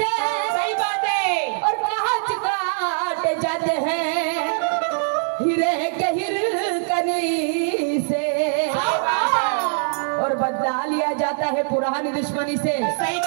सही बात है. और कांच काटे जाते हैं हीरे के हिरकनी से. और बदला लिया जाता है पुरानी दुश्मनी से. सही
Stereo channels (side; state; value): left; silent; 62 dB below the other